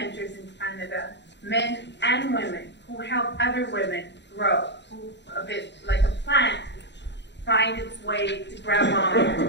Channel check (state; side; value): late; right; 0.51 ms